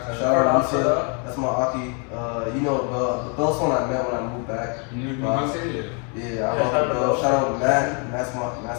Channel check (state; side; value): quieter; right; 37.0 dB